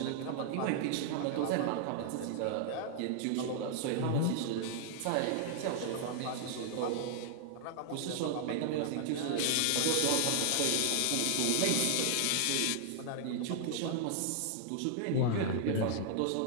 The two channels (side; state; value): both; different; correlation -0.01